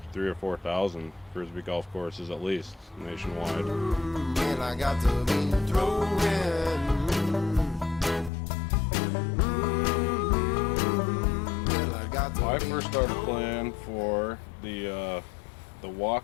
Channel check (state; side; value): drops out; right; at 8.3 s